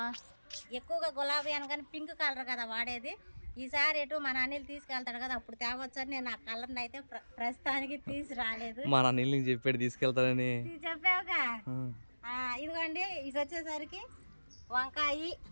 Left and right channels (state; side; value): inverted; both; correlation -1.00